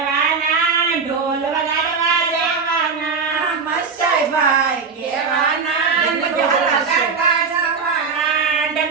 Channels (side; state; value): left; quieter; 5.3 dB